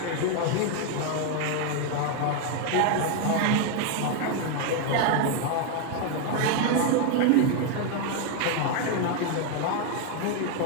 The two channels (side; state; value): both; different; correlation 0.01